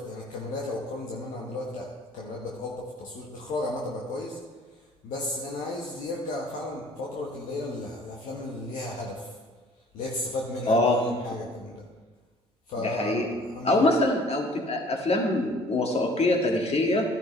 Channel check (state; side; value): normal; both; correlation 0.53